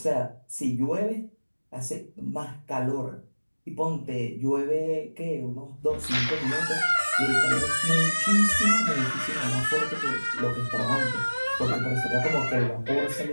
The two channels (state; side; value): inverted; both; correlation -1.00